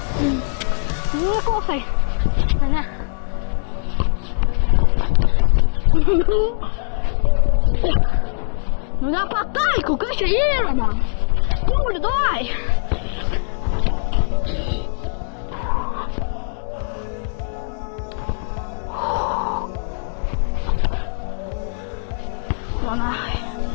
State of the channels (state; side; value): silent; right; digital silence